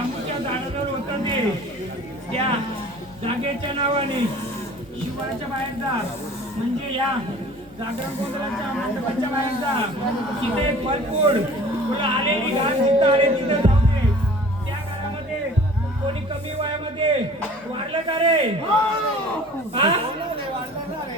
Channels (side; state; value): both; normal; correlation 0.46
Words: झाडावर होतं ते त्या जागेच्या नावाने शिवाच्या बाहेर जा म्हणजे या जागरण गोंधळाच्या मंडपाच्या बाहेर जा तिथे एक फलफूड तुला आलेली घास जिथं आले तिथं जाऊ दे त्या घरामध्ये कोणी कमी वयामध्ये वाढलं का रे हा